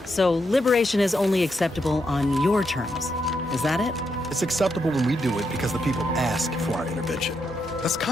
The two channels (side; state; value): both; normal; correlation 0.81